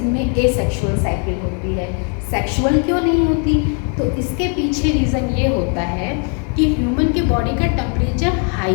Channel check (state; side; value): quieter; right; 39.7 dB